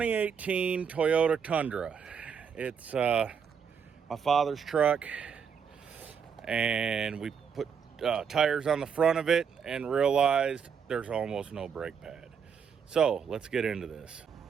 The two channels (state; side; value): quieter; left; 6.9 dB